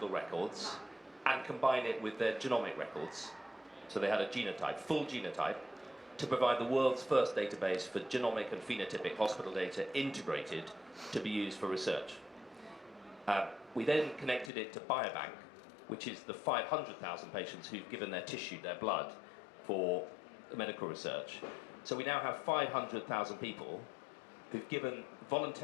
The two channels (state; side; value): drops out; right; at 14.5 s